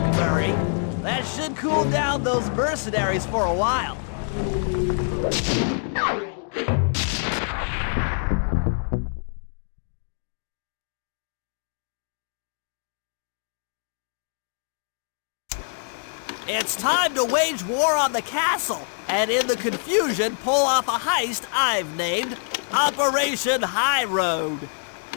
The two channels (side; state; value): right; silent; digital silence